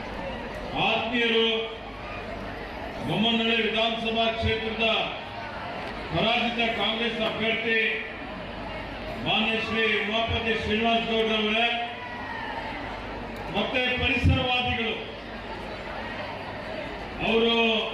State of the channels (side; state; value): both; identical; correlation 1.00